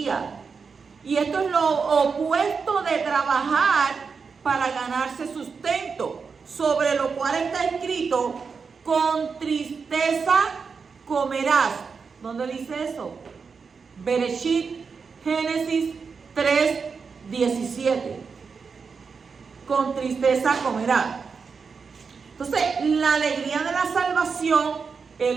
Y esto es lo opuesto de trabajar para ganarse sustento, sobre lo cual está escrito: con tristeza comerás. ¿Dónde dice eso? Bereshit, Génesis 3:17. Con tristeza comerás. Entonces, la alegría de la salvación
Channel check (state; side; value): quieter; left; 5.4 dB